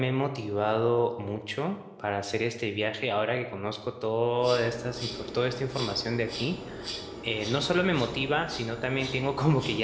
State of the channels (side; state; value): both; identical; correlation 1.00